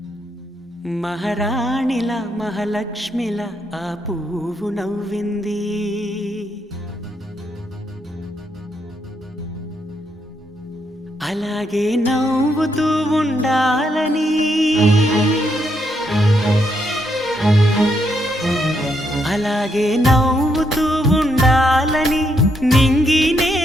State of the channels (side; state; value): both; normal; correlation 0.77